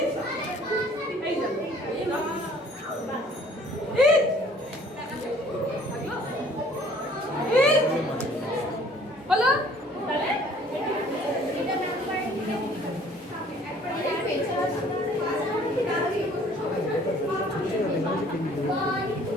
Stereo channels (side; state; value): both; normal; correlation 0.55